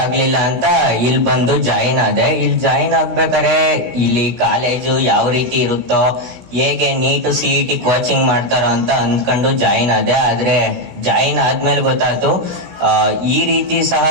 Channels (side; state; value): left; late; 16 ms